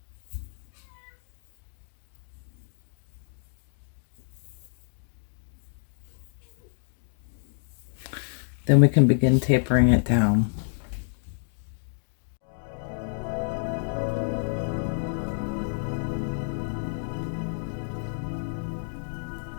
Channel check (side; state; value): right; silent; digital silence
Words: Then we can begin tapering it down.